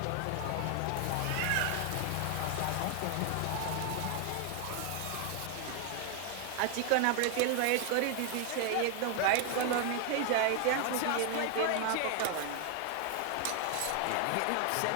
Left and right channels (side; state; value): both; different; correlation 0.00